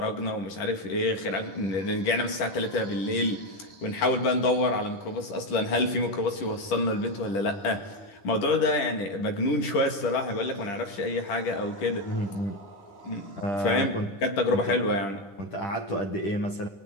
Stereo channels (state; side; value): late; right; 10 ms